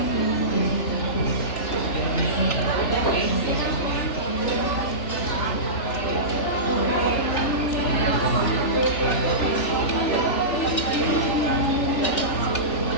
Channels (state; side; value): late; right; 3.4 ms